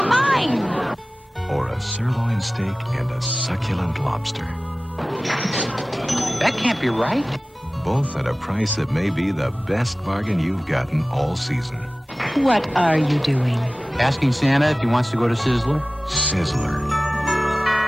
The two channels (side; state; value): both; normal; correlation 0.97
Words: mine! Or a sirloin steak and a succulent lobster. That can't be right. Both at a price that may be the best bargain you've gotten all season. What are you doing? Asking Santa if he wants to go to Sizzler? Sizzler.